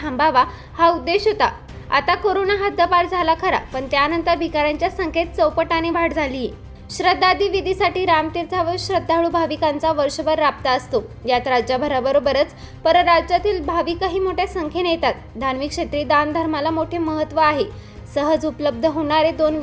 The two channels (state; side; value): identical; both; correlation 1.00